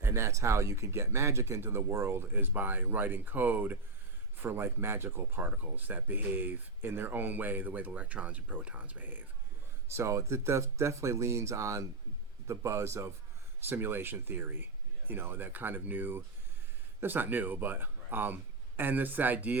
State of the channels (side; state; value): left; quieter; 3.3 dB